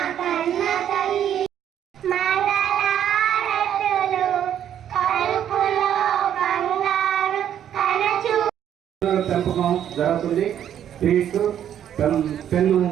పెంపకం జరుగుతుంది. స్ట్రీట్ పెన్ను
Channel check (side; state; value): left; quieter; 10.0 dB